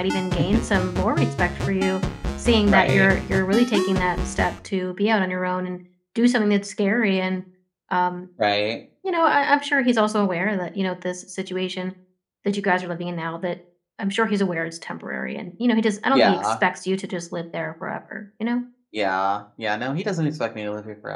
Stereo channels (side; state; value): both; identical; correlation 1.00